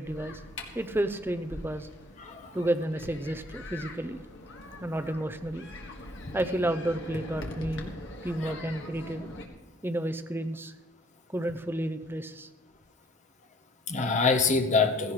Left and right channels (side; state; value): both; normal; correlation 0.59